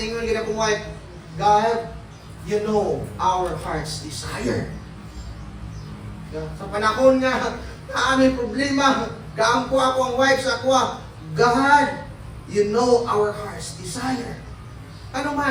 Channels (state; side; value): identical; both; correlation 1.00